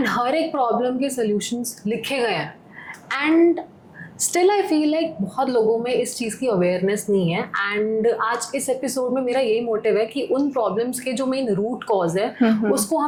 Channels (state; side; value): identical; both; correlation 1.00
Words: हर एक प्रॉब्लम के सॉल्यूशंस लिखे गए हैं, and still I feel like बहुत लोगों में इस चीज़ की अवेयरनेस नहीं है। एंड आज इस एपिसोड में मेरा यही मोटिव है कि उन प्रॉब्लम्स के जो मेन रूट कॉज है उसको